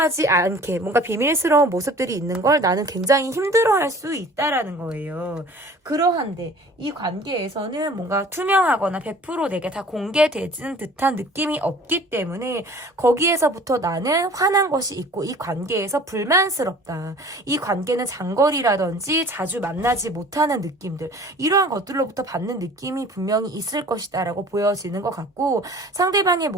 않게 뭔가 비밀스러운 모습들이 있는 걸 나는 굉장히 힘들어할 수 있다라는 거예요. 그러한데 이 관계에서는 뭔가 투명하거나 100% 내게 다 공개되는 듯한 느낌이 없기 때문에 거기에서부터 나는 화난 것이 있고 이 관계에서 불만스럽다. 이 관계는 장거리라든지 자주 만나지 못하는 느낌들, 이러한 것들로부터 받는 느낌이 분명히 있을 것이다 라고 보여지는 것 같고, 상대방의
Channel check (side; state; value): both; normal; correlation 0.47